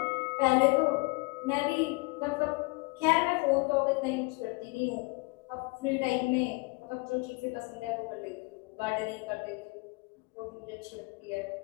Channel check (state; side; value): quieter; right; 27.1 dB